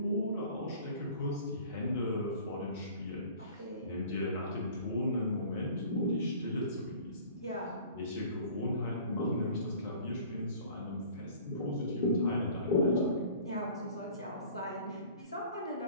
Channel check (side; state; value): both; inverted; correlation -0.47